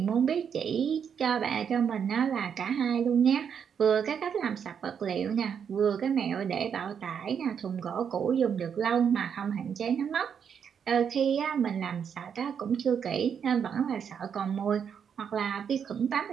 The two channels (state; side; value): quieter; left; 7.5 dB